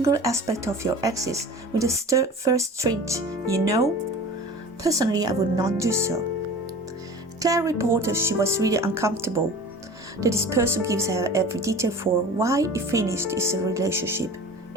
aspect of your exes with the first trait you know? Personally, I would not do so. Claire reported she was really uncomfortable that this person gives her every detail for why he finished his relationship,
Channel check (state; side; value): normal; both; correlation 0.39